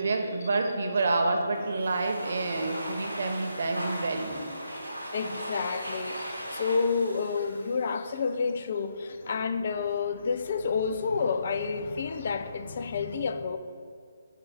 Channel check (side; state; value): both; inverted; correlation -0.78